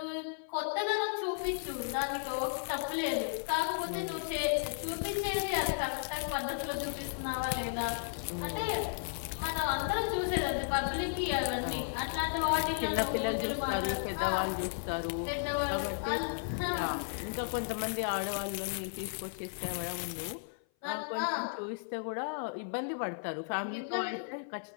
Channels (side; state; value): right; silent; 55 dB below the other